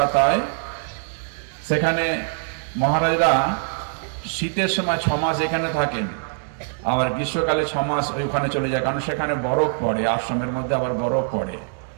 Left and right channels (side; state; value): left; silent; digital silence